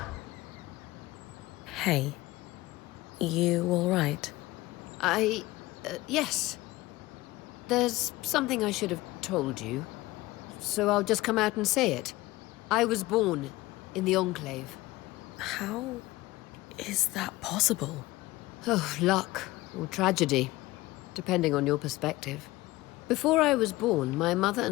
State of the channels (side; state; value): right; quieter; 19.0 dB